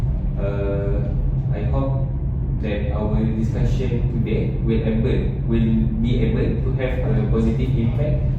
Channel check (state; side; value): identical; both; correlation 1.00